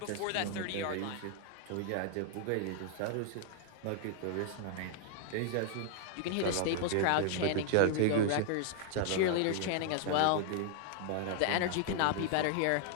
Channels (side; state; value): both; different; correlation 0.00